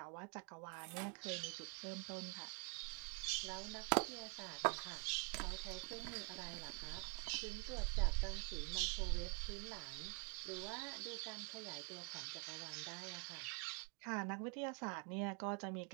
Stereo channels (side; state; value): left; quieter; 37.9 dB